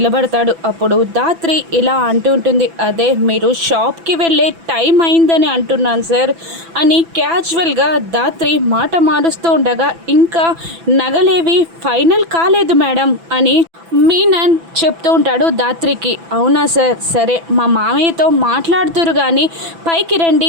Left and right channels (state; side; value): late; left; 6.0 ms